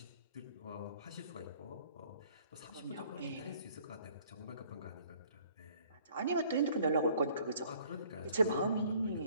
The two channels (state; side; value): inverted; both; correlation -0.58